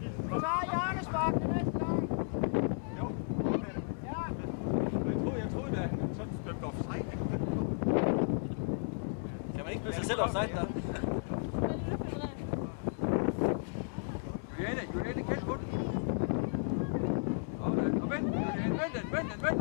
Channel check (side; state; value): right; silent; digital silence